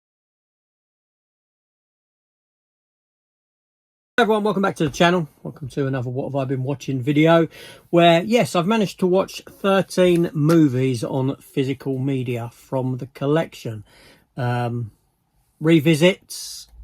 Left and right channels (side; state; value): both; identical; correlation 1.00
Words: Hi everyone, welcome back to the channel. Welcome to another What Have I Been Watching video where, yes, I've managed to watch 13 movies on physical media from the collection. Revisits,